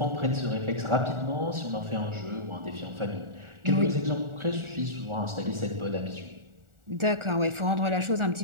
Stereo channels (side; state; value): left; late; 1.4 ms